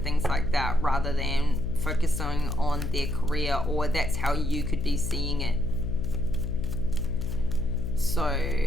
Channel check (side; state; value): left; noise; hum, 4 dB below the sound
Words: things like that, rather than focusing on their career, or that's how you could be seeing it. So